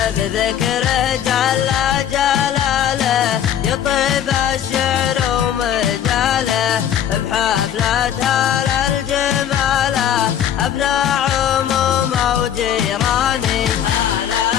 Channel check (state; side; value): quieter; right; 9.8 dB